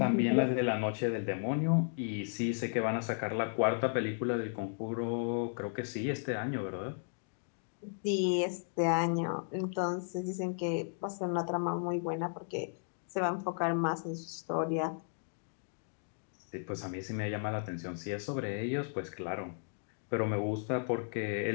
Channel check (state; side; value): silent; right; digital silence